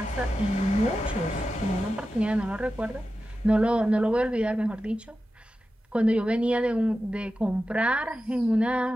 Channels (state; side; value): normal; both; correlation 0.92